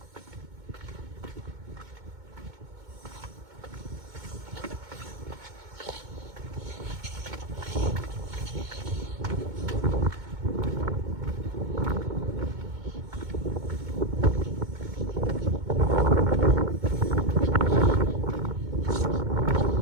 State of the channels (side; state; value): left; late; 2.2 ms